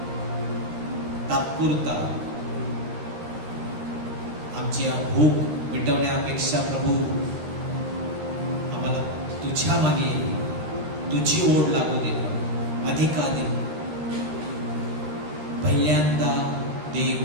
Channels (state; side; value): late; left; 13 ms